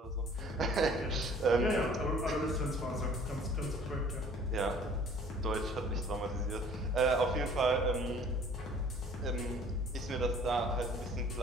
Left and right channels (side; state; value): both; normal; correlation 0.52